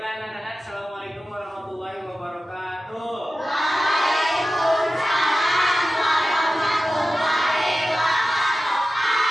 anak-anak, Assalamualaikum warahmatullahi wabarakatuh. Waalaikumsalam warahmatullahi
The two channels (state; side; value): normal; both; correlation 0.94